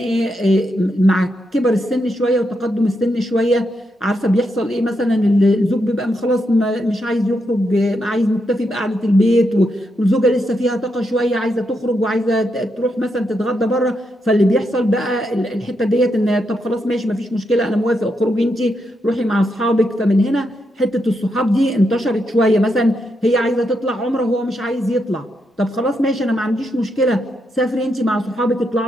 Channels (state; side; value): normal; both; correlation 0.82